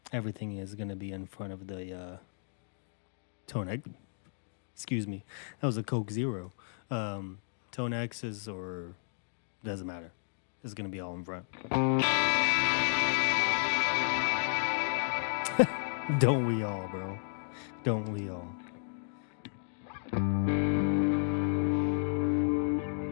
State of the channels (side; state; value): right; silent; digital silence